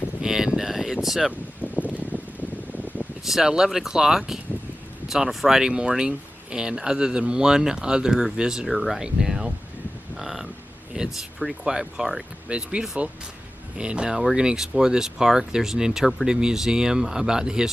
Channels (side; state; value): both; normal; correlation 0.95